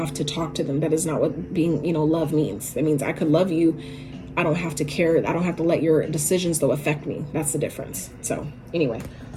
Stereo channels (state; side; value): identical; both; correlation 1.00